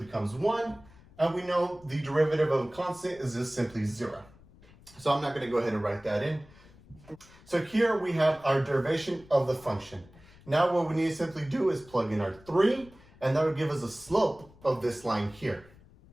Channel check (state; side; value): noise; left; rumble, 24 dB below the sound